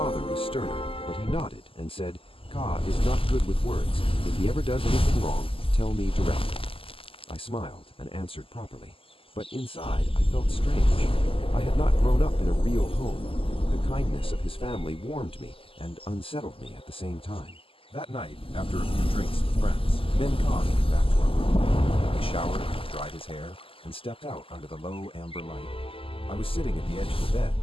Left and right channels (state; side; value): late; right; 0.26 ms